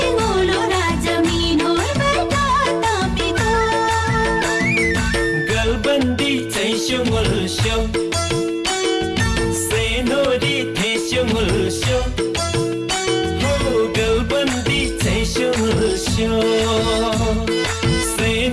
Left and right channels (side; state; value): both; identical; correlation 1.00